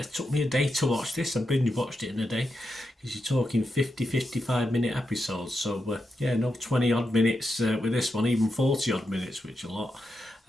took me a day to watch this. I binge watched it in a day because you're talking 55 minute episodes. So no 20 odd minutes with this one, even 40 odd minutes, which is a lot.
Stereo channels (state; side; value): normal; both; correlation 0.87